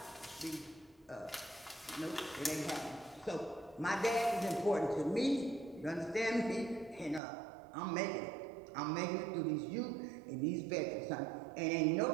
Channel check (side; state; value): left; drops out; at 7.2 s